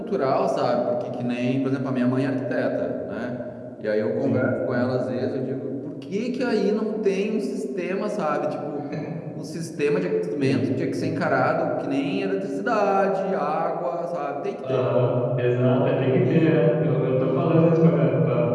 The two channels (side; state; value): both; identical; correlation 1.00